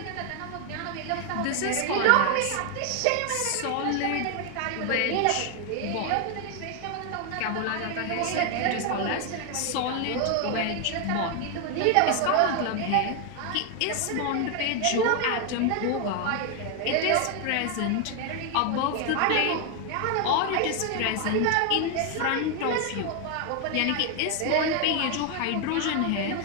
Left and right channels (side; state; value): both; different; correlation 0.01